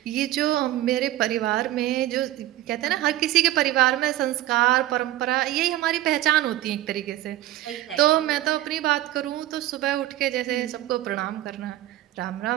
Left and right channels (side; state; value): left; quieter; 14.7 dB